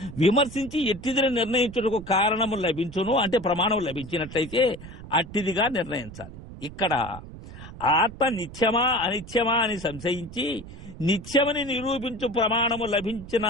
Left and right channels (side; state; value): right; noise; rumble, 14 dB below the sound